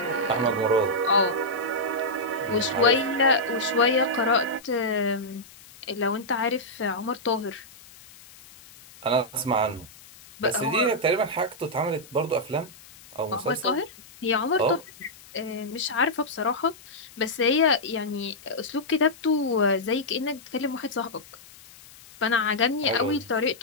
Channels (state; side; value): noise; left; hiss, 22 dB below the sound